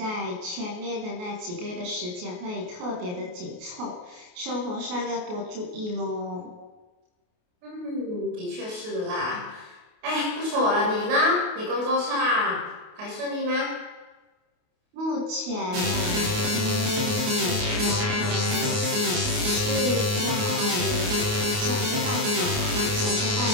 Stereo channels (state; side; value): late; left; 28 ms